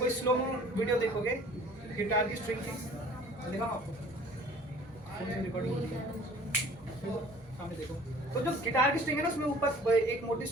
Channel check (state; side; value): noise; right; hum, 27 dB below the sound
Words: स्लो मो वीडियो देखोगे गिटार की स्ट्रिंग की, दिखाऊं आपको, रिकॉर्डिंग होती है, सामने देखो। तो जो गिटार की स्ट्रिंग है ना, उसमें ऊपर एक मोटी